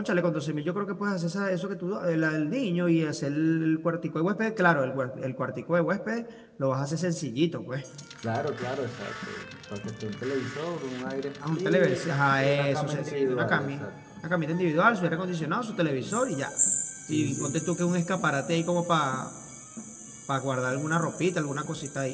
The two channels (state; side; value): identical; both; correlation 1.00